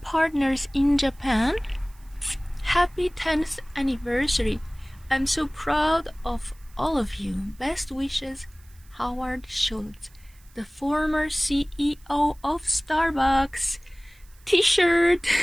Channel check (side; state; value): right; noise; hiss, 29 dB below the sound